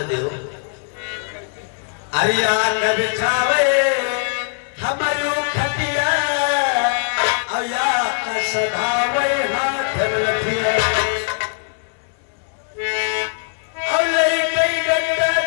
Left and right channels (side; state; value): right; silent; 65 dB below the other